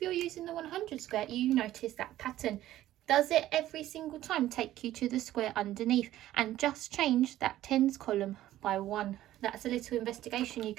you're using the 100 square, you notice that pattern. Does it every single time take you to the square underneath and just change that tens column by 1? That's a little investigation you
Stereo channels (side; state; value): left; quieter; 14.0 dB